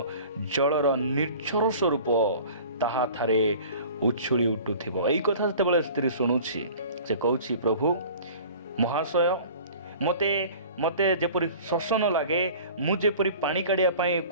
जलर निर्झर स्वरूप ताहा थारे उछुली उठुथिबो। एई कथा जेतेबेले स्त्री शुणुछि से कहउछि प्रभु महाशय मते जेपरि शोष न लागे, मु जेपरि पानी काढ़िया पाए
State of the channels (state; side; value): inverted; both; correlation -0.43